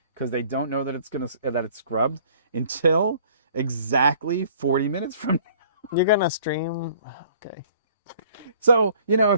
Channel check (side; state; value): both; inverted; correlation -0.55